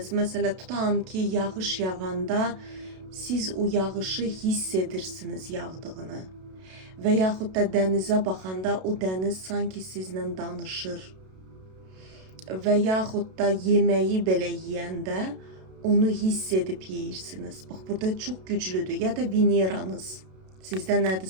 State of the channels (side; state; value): left; late; 32 ms